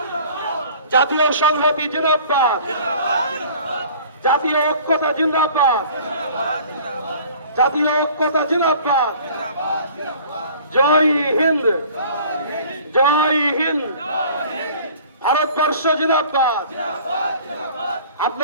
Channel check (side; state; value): both; inverted; correlation -0.48